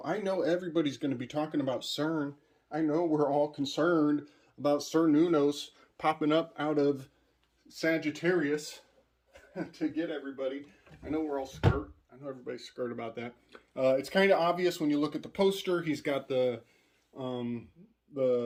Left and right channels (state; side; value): identical; both; correlation 1.00